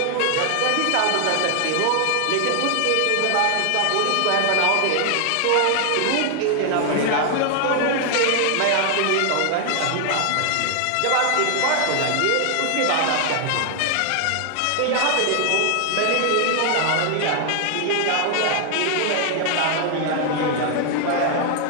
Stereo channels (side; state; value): both; different; correlation 0.00